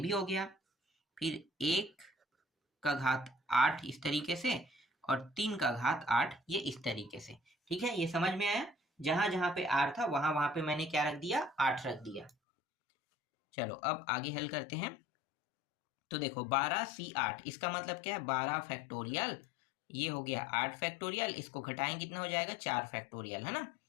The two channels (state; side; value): drops out; right; at 12.3 s